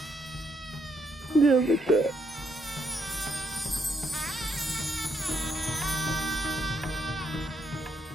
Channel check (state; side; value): normal; both; correlation 0.75